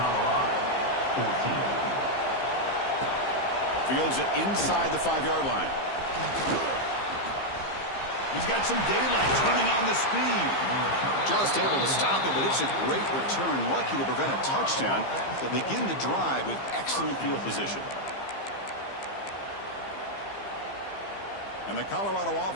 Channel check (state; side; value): late; right; 15 ms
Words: 14. Fields it inside the 5-yard line. He's got some daylight, turning on the speed. Just able to stop it, but it's a great return. Lucky to prevent a touchdown. They'll begin the drive with excellent field position. And the Colorado